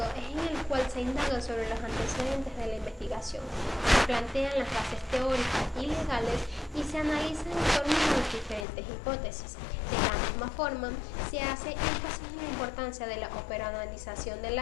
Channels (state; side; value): drops out; right; at 8.7 s